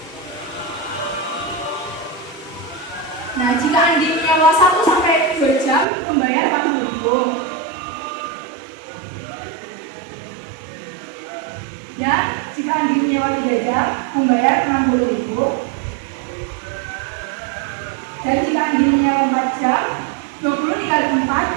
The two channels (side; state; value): left; drops out; at 5.9 s